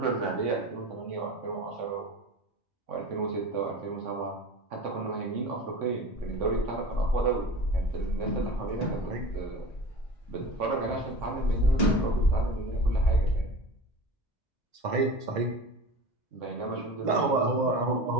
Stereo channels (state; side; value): normal; both; correlation 0.35